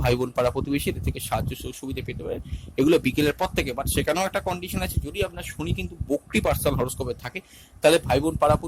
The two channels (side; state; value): both; identical; correlation 1.00